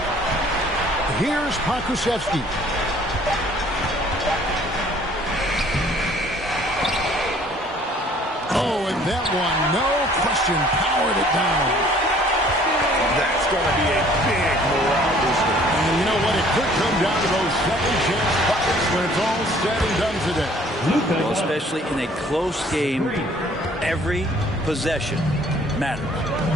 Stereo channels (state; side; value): normal; both; correlation 0.56